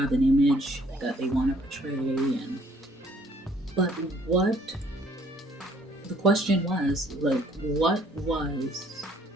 an image that they want to portray, but what the question was, like, what was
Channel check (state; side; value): normal; both; correlation 0.61